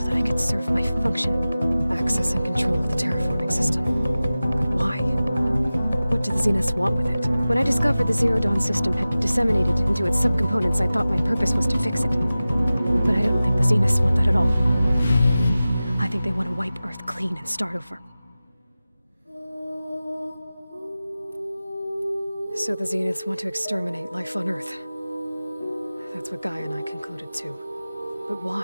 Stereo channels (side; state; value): both; inverted; correlation -0.96